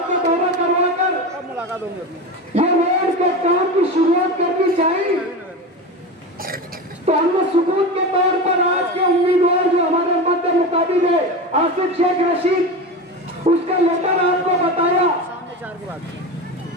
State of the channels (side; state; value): both; normal; correlation 0.24